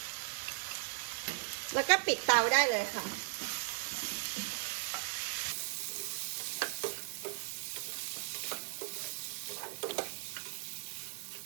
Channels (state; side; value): silent; left; 53 dB below the other